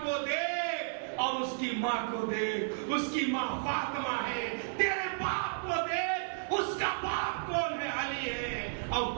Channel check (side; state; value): left; silent; 56 dB below the other